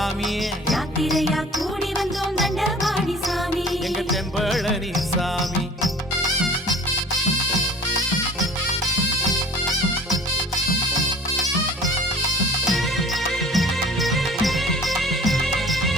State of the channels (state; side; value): normal; both; correlation 0.47